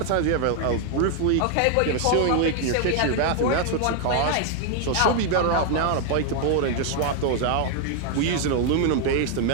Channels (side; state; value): both; different; correlation 0.00